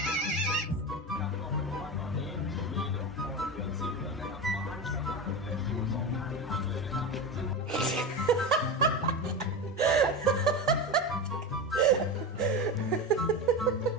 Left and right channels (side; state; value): both; normal; correlation 0.22